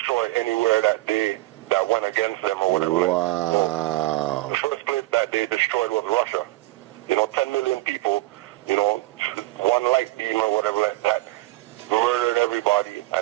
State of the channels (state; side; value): quieter; left; 18.6 dB